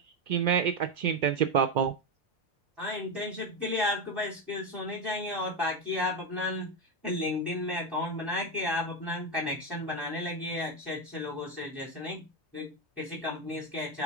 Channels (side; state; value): right; late; 1.1 ms